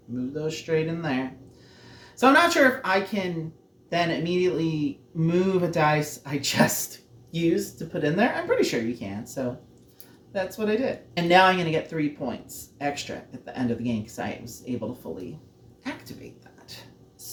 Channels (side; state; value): both; identical; correlation 1.00